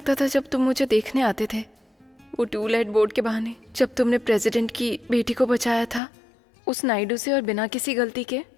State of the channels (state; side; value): drops out; right; at 6.0 s